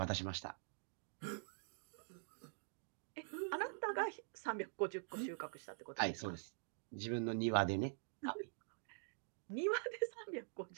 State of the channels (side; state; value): left; silent; digital silence